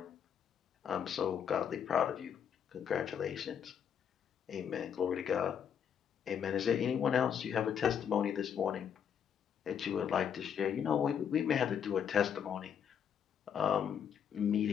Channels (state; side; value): quieter; right; 8.1 dB